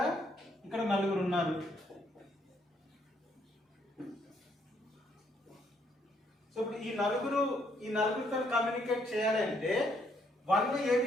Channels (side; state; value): both; normal; correlation 0.71